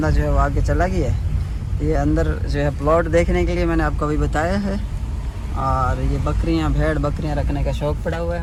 जो है वो आगे चला गया है। ये अंदर जो है प्लॉट देखने के लिए मैंने आपको अभी बताया है। और ये बकरियाँ भेड़ बकरियाँ रखने का शौक़ पड़ा हुआ है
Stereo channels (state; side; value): identical; both; correlation 1.00